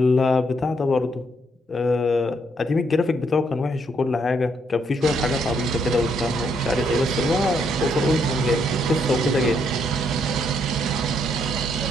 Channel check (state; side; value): normal; both; correlation 0.73